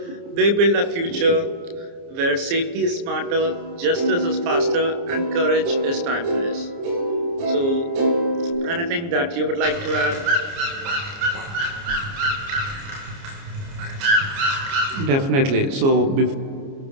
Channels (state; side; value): late; left; 29 ms